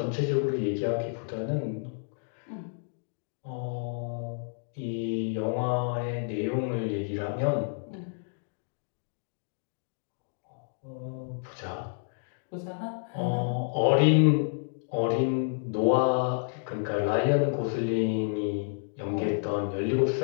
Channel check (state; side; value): silent; right; digital silence